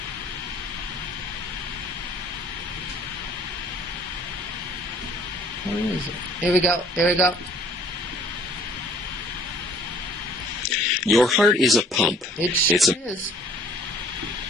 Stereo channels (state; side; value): normal; both; correlation 0.55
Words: Where is it? Here we go. Here we go. Your heart is a pump. It It's a is.